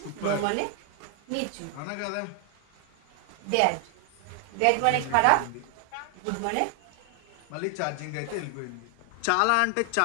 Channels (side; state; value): both; different; correlation 0.00